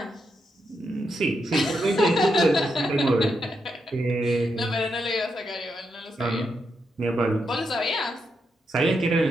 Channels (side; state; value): both; normal; correlation 0.83